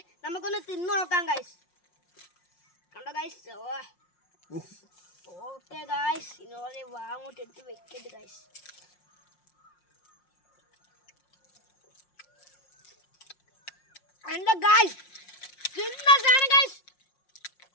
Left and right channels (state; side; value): late; right; 5.6 ms